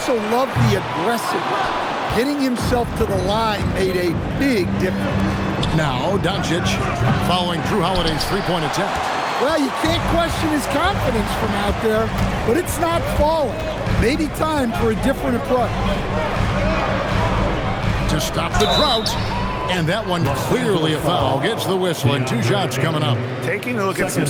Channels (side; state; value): both; identical; correlation 1.00